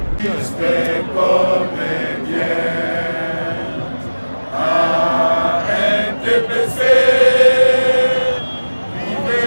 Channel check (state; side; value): inverted; both; correlation -1.00